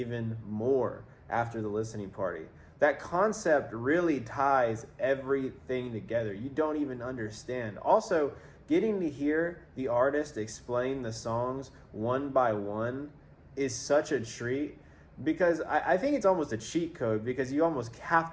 more after the listening party. That concept really ties everything together. You don't even understand. Also, getting to hear the artist explain the songs one by one is such a treat, because I think it's almost a cheat code, because you almost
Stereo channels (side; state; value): both; identical; correlation 1.00